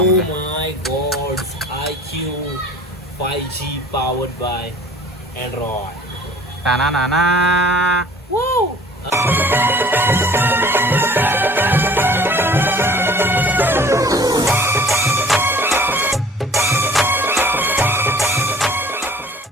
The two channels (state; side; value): normal; both; correlation 0.49